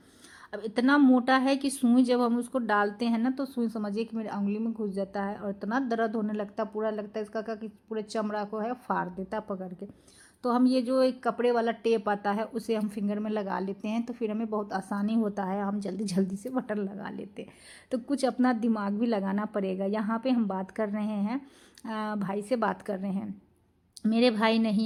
अब इतना मोटा है कि सुई जब हम उसको डालते हैं ना तो सुई समझिए कि मेरे उंगली में घुस जाता है और इतना दर्द होने लगता, पूरा लगता है इसका का कि पूरे चमड़ा को है फाड़ देता पकड़ के। तो हम ये जो एक कपड़े वाला टेप आता है उसे हम फिंगर में लगा लेते हैं, तो फिर हमें बहुत आसानी होता है, हम जल्दी जल्दी से बटन लगा लेते हैं। तो कुछ अपना दिमाग भी लगाना पड़ेगा। यहाँ पे हम बात कर रहे हैं, भाई से बात कर रहे हैं। मेरे भाई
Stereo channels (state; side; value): identical; both; correlation 1.00